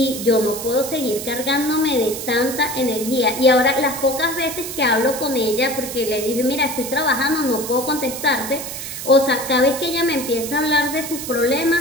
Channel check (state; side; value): noise; right; hiss, 8 dB below the sound